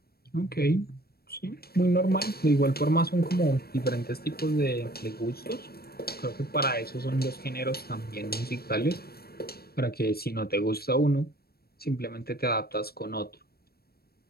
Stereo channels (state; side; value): late; right; 0.45 ms